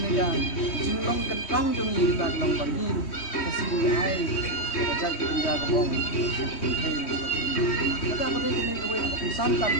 ya jinglong kentang jong ni kita kelong pergi kasih ai kerja kerja kebong kata apa dia kene kowe santan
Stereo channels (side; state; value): right; late; 3.1 ms